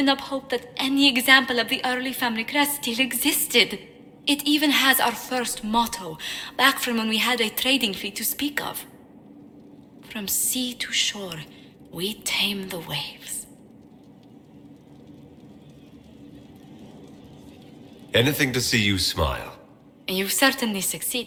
up hope that any example of the early family crest still existed. It even has our first motto, back from when we had a trading fleet to speak of. From sea to shore, we tame the waves. Anything to see you smile. You've certainly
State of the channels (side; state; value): both; identical; correlation 1.00